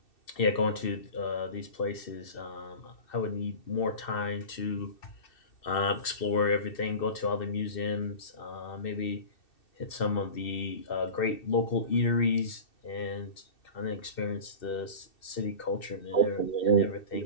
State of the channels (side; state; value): right; late; 2.6 ms